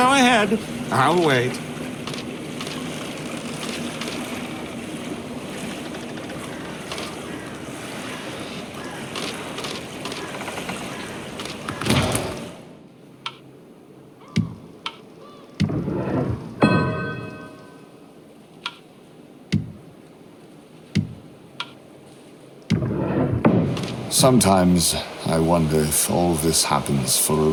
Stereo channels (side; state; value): both; identical; correlation 1.00